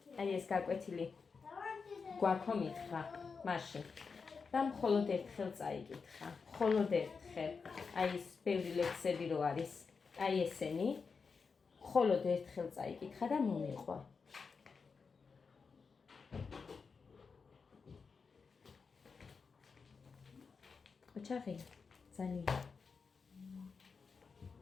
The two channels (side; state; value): right; quieter; 5.2 dB